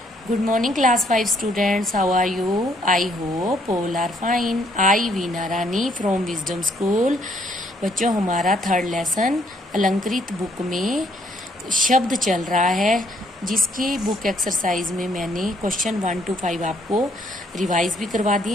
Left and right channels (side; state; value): both; normal; correlation 0.67